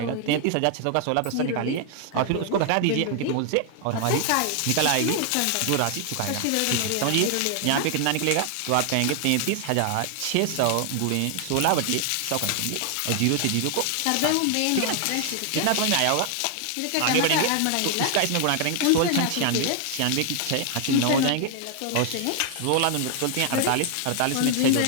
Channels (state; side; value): different; both; correlation 0.00